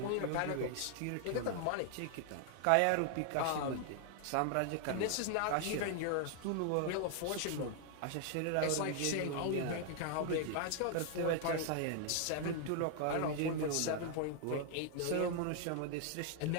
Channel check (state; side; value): different; both; correlation 0.00